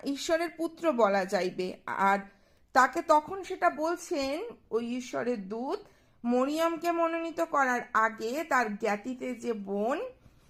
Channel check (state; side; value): identical; both; correlation 1.00